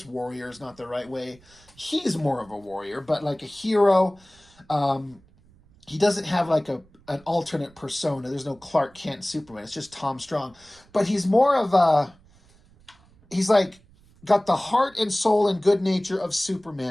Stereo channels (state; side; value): noise; right; rumble, 29 dB below the sound